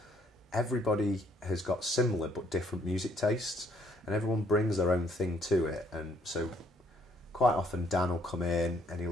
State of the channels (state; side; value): normal; both; correlation 0.67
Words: everybody has got similar but different music tastes, and everyone brings their own thing to it. And so quite often Dan will come in and